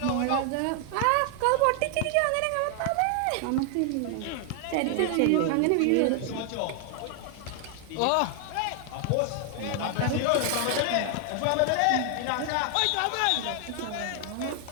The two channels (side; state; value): both; different; correlation 0.00